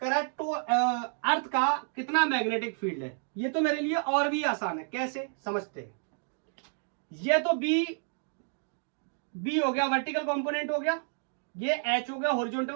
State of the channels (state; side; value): silent; left; 58 dB below the other